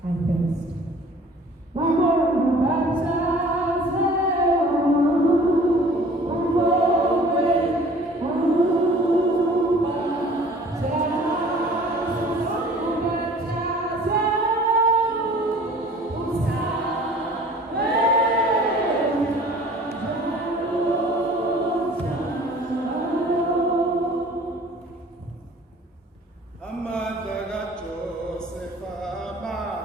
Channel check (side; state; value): both; normal; correlation 0.49